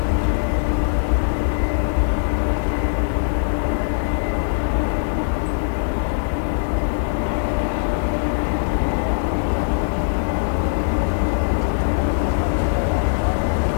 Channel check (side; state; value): right; silent; 65 dB below the other